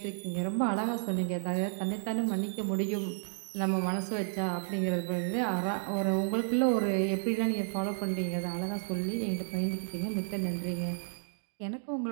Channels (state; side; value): silent; left; digital silence